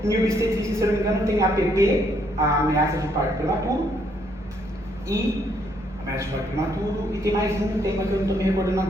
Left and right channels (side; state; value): both; normal; correlation 0.71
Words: Em obstetrícia, se eu não me engano, tem APP, a ameaça de parto prematuro, e tem mais um tema que eu não estou me recordando